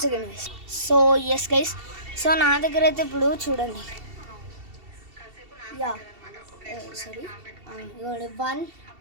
second guys. So guys, so నా దగ్గర అయితే ఇప్పుడు చూడండి. సారీ, ఇగోండి 1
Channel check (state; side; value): late; left; 2.7 ms